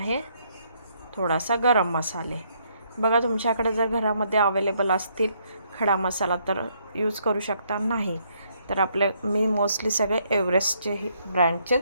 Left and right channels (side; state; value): both; inverted; correlation -0.71